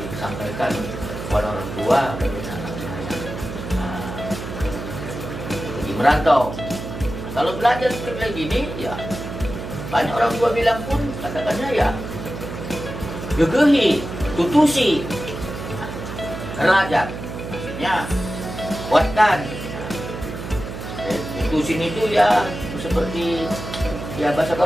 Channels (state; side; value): noise; right; hum, 8 dB below the sound